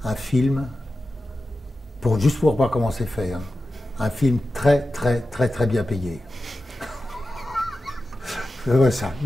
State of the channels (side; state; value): both; normal; correlation 0.93